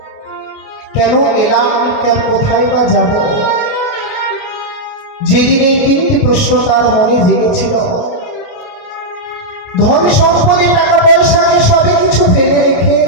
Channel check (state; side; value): late; right; 28 ms